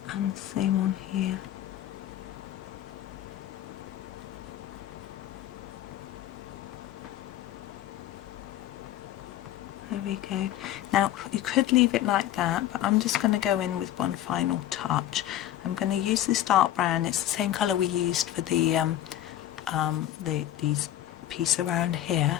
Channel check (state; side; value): quieter; right; 12.6 dB